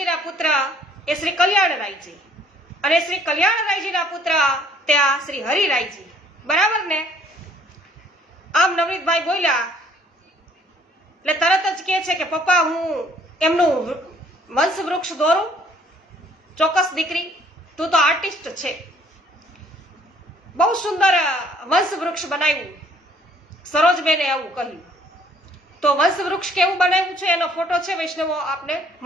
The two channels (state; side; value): normal; both; correlation 0.60